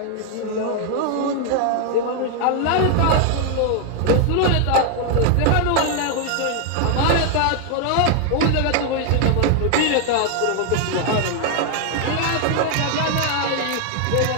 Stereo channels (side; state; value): both; different; correlation 0.00